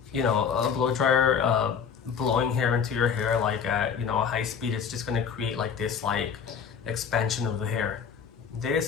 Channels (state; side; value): quieter; right; 7.0 dB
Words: you know, a blow dryer blowing hair into your hair like at, you know, a high speed, it's just going to create like this like expansion of the hair.